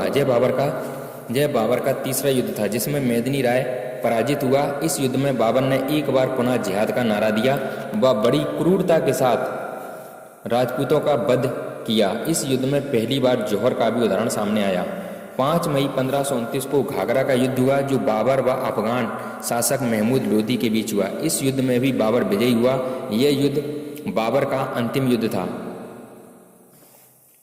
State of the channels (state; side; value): identical; both; correlation 1.00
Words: यह बाबर का तीसरा युद्ध था, जिसमें मेदिनी राय पराजित हुआ। इस युद्ध में बाबर ने एक बार पुनः जिहाद का नारा दिया व बड़ी क्रूरता के साथ राजपूतों का वध किया। इस युद्ध में पहली बार जौहर का भी उदाहरण सामने आया। 5 मई 1529 को घाघरा का युद्ध हुआ, जो बाबर व अफगान शासक महमूद लोधी के बीच हुआ। इस युद्ध में भी बाबर विजयी हुआ। यह युद्ध बाबर का अंतिम युद्ध था।